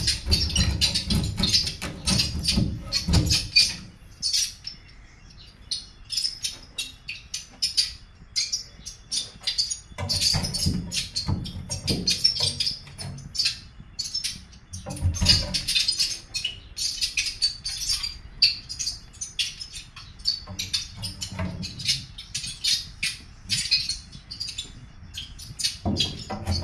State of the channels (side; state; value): both; identical; correlation 1.00